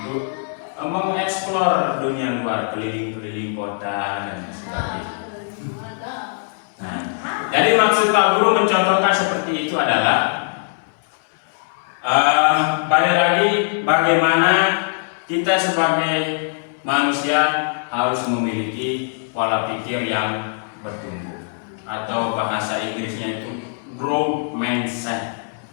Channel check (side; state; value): right; silent; 65 dB below the other